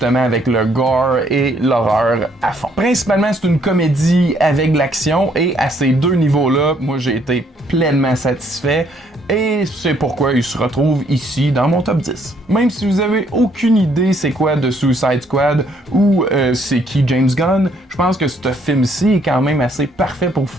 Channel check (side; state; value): both; normal; correlation 0.67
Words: avec le gore et l'horreur à fond. Principalement, c'est une comédie avec de l'action et à ces deux niveaux-là, moi j'ai été pleinement satisfait. Et c'est pourquoi il se retrouve ici dans mon top 10. Même si vous avez aucune idée c'est quoi de Suicide Squad ou c'est qui James Gunn, je pense que ce film-ci est quand même assez parfait pour vous